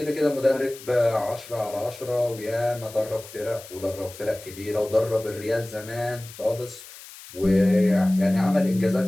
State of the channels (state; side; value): noise; left; hiss, 17 dB below the sound